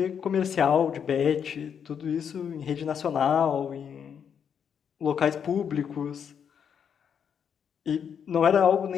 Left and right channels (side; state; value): right; quieter; 7.7 dB